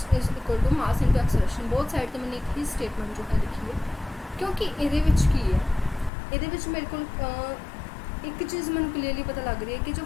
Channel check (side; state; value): right; drops out; at 6.1 s